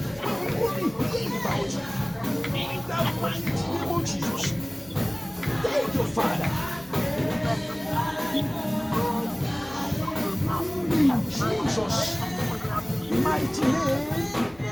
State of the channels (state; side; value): noise; left; hum, 25 dB below the sound